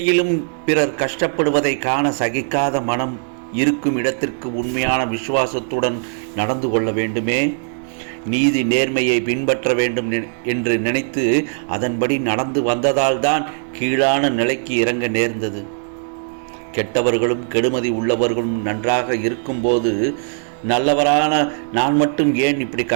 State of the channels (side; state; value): left; silent; digital silence